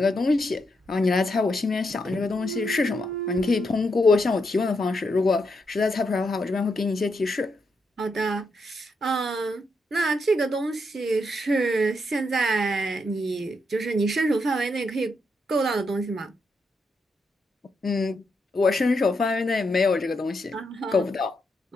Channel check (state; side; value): normal; both; correlation 0.81